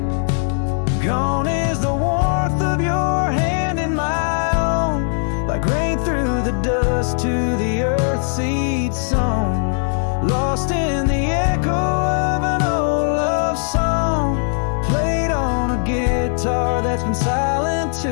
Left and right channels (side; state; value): right; silent; 64 dB below the other